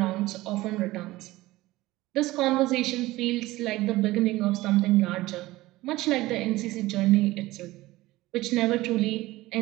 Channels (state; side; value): quieter; left; 18.2 dB